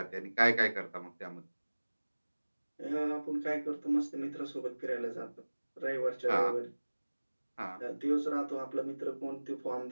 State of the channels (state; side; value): inverted; both; correlation -1.00